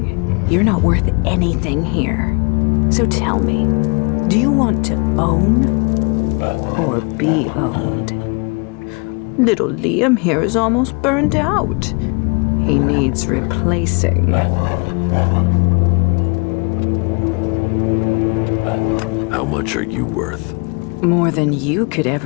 you're not worth anything here. So tell me, do you want to own or be owned. Little Liam here is almost burned out. He needs replacing. How much are you worth? More than you could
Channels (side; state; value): right; quieter; 33.0 dB